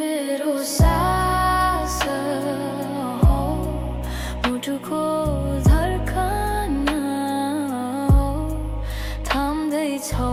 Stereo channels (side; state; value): both; identical; correlation 1.00